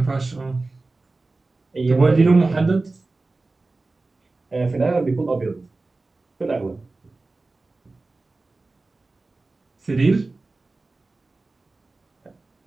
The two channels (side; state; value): left; quieter; 3.4 dB